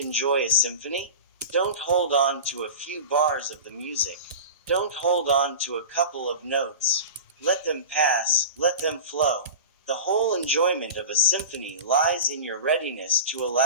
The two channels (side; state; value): both; inverted; correlation -0.32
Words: a symphony? Don't hold on to a few bars of the music. Don't hold on to a couple of notes. Let them pass, let them flow. The whole enjoyment of a symphony lies in your readiness to